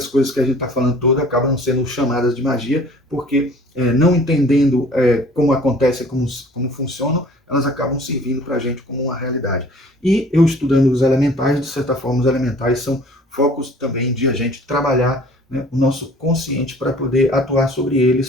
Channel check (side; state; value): both; normal; correlation 0.50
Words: coisas que a gente está falando todas acabam sendo chamadas de magia, porque não entendendo como acontece, como funcionam, elas acabam servindo para a gente como uma realidade. E eu estudando os elementais, de certa forma, os elementais são focos também de a gente trabalhar, né, o nosso consciente para poder atuar sobre